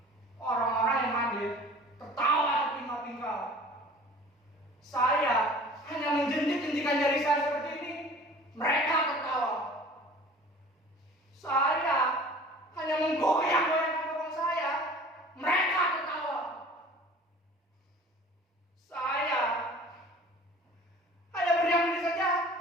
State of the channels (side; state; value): both; normal; correlation 0.45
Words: orang-orang yang hadir tertawa terpingkal-pingkal. Saya hanya menjentik-jentikan jari saya seperti ini, mereka tertawa. Saya hanya menggoyang-goyangkan bokong saya, mereka tertawa. Saya hanya berdiam diri saja,